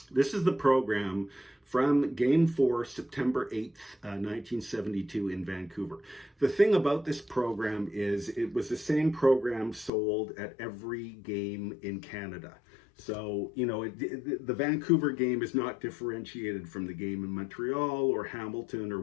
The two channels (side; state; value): right; drops out; at 9.9 s